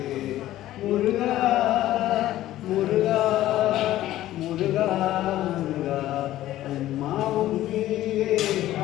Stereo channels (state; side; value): quieter; right; 14.3 dB